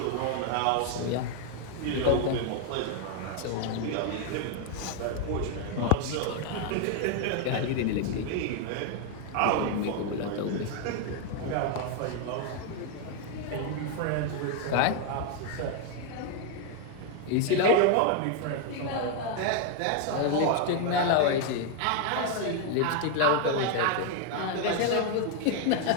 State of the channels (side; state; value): both; different; correlation 0.00